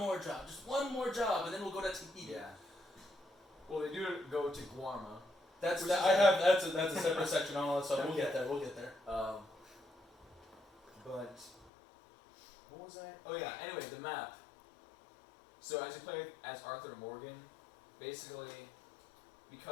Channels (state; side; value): drops out; right; at 11.7 s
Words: job, just one more job, and then we'll go to Tahiti. Yeah. Well, they do go to Guarma. That's a separate section on all that stuff. We'll get there. But what was I? Oh yeah. Anyway, the map. So as you play as Arthur Morgan, basically,